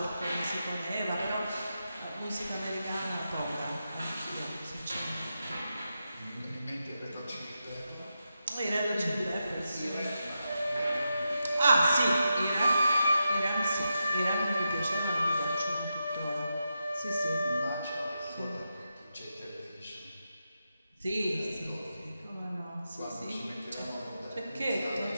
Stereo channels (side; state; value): both; inverted; correlation -0.88